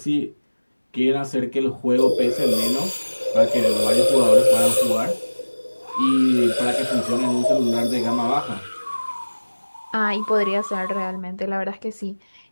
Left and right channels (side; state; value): both; inverted; correlation -1.00